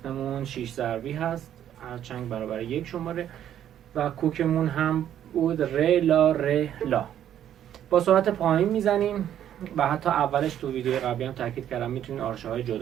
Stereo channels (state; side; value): quieter; left; 10.6 dB